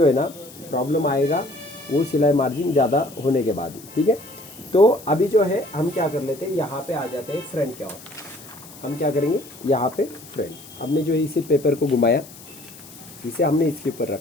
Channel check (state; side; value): noise; left; hiss, 19 dB below the sound